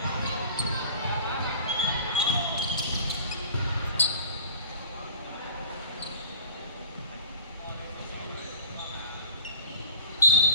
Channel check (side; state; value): both; inverted; correlation -0.42